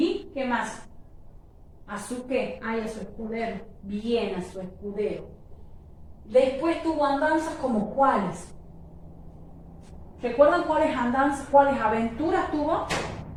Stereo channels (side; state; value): both; identical; correlation 1.00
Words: qué más? ¿A su qué? Ah, y a su escudero. Bien, a su escudero. Después tuvo andanzas como cuáles. ¿Recuerdan cuáles andanzas, cuáles aventuras tuvo?